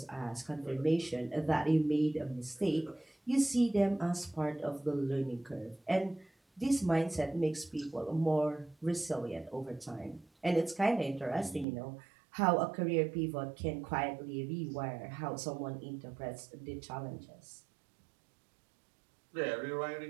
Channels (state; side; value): drops out; left; at 11.7 s